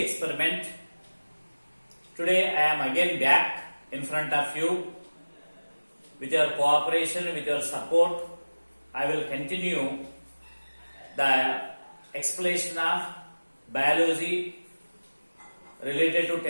Today I am again back in front of you. With your cooperation, with your support, I will continue the explanation of biology related to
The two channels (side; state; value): both; inverted; correlation -1.00